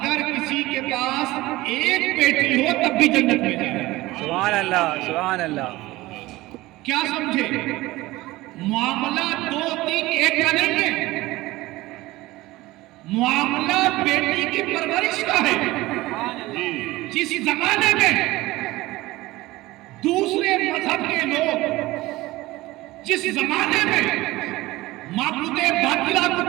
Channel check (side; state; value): left; quieter; 18.9 dB